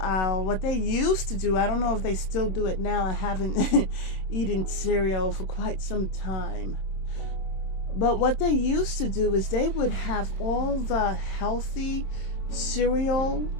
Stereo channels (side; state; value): right; late; 26 ms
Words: aisle, what they used to do, I don't know if they still do it now. I haven't eaten cereal for quite some time. But what they used to do is they would have all the healthy cereal